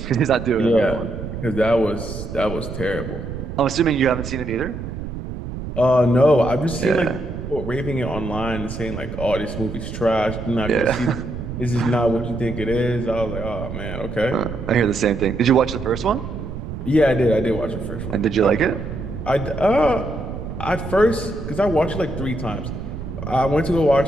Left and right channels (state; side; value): noise; right; rumble, 8 dB below the sound